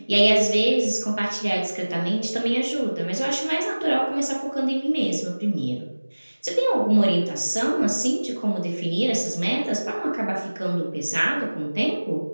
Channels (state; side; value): inverted; both; correlation -1.00